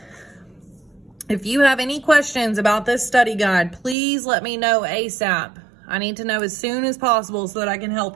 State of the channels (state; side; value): drops out; left; at 4.0 s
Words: if you have any questions about this study guide, please let me know ASAP. I need to know as soon as possible so that I can